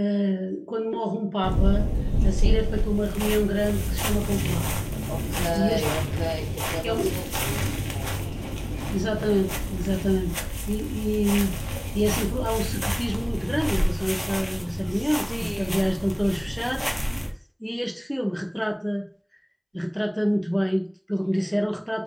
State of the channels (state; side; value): identical; both; correlation 1.00